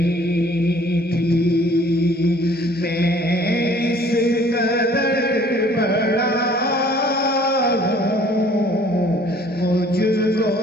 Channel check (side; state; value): both; normal; correlation 0.55